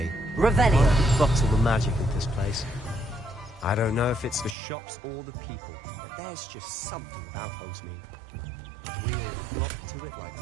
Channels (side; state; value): left; drops out; at 4.5 s